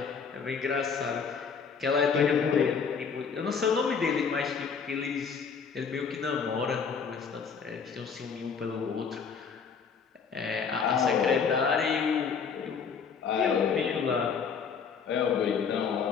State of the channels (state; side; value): quieter; right; 6.1 dB